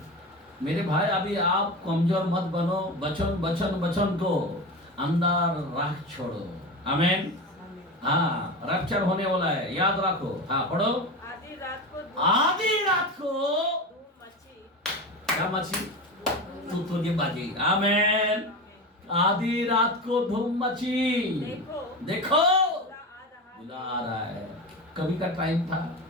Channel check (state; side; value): normal; both; correlation 0.24